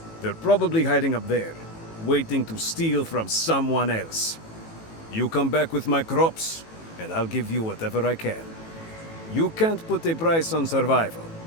They're probably hiding up there, waiting to steal from someone else. You come back with my crops, and I'll give you whatever I can. You can't put a price on survival.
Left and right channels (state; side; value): late; right; 18 ms